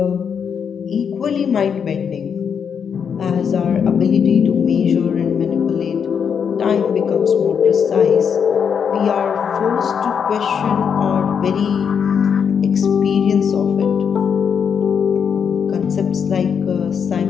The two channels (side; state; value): right; quieter; 7.1 dB